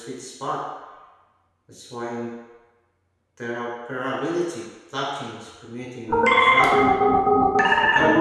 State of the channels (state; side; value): identical; both; correlation 1.00